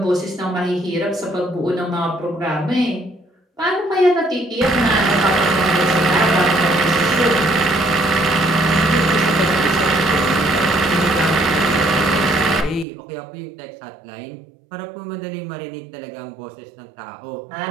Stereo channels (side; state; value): left; drops out; at 12.9 s